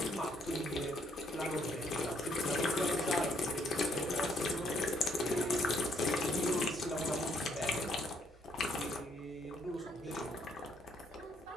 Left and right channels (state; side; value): normal; both; correlation 0.69